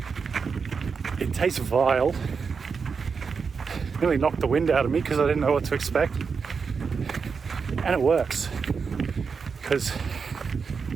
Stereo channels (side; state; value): left; quieter; 5.5 dB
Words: It tastes vile. Nearly knocked the wind out of me because I didn't know what to expect. And it works because